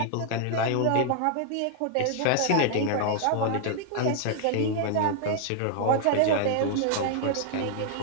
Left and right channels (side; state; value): both; different; correlation 0.00